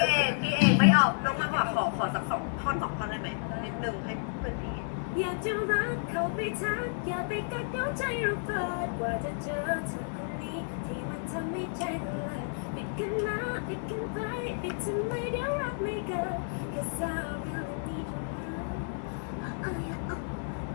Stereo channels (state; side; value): silent; right; digital silence